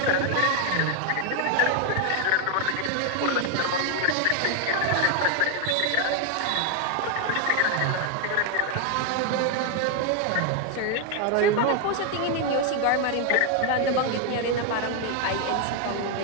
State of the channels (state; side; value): different; both; correlation 0.01